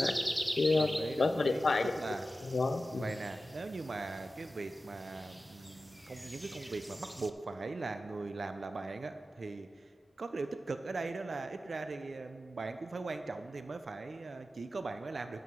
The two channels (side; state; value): both; normal; correlation 0.93